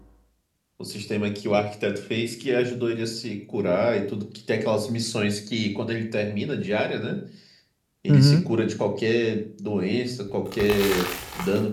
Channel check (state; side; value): identical; both; correlation 1.00